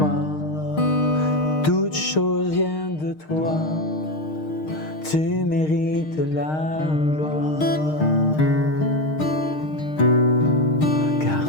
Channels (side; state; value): right; late; 6.5 ms